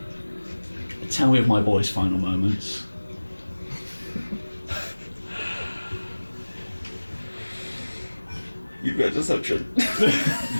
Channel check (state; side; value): inverted; both; correlation -1.00